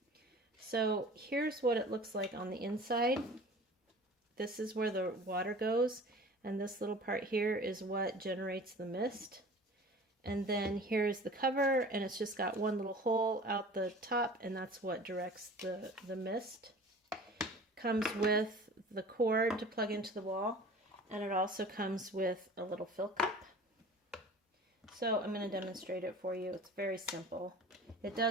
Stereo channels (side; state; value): both; normal; correlation 0.42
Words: So here's what it looks like on the inside. This is where the water goes, and this little part here is what generates the mist. And then here's the cover, and it's just got one little hole out the top, and that's what directs the mist. Comes with the cord to plug into the wall, and it also comes with a little fill cup. So I'm going to demonstrate it for you. It's very simple. It